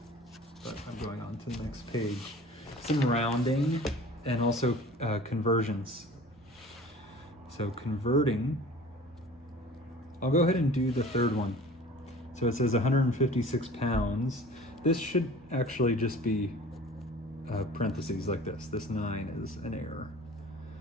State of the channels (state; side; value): normal; both; correlation 0.44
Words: but I'm going on to the next page. Some rounding and also conversions. So converting, I'll go ahead and do the third one. So it says 156 pounds. This should actually just be parentheses like this. This 9 is an error.